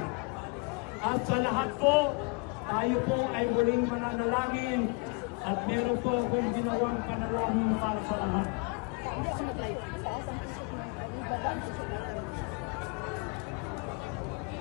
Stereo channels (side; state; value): right; quieter; 31.4 dB